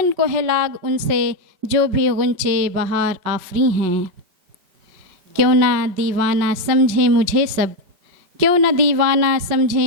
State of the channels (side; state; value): left; late; 5.4 ms